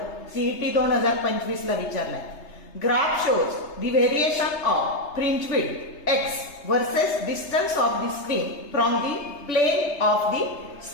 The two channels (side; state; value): right; late; 3.3 ms